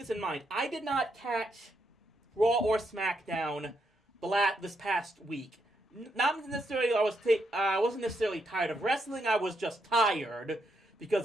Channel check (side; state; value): both; normal; correlation 0.79